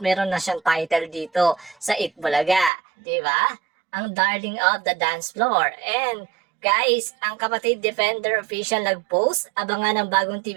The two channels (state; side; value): drops out; left; at 2.7 s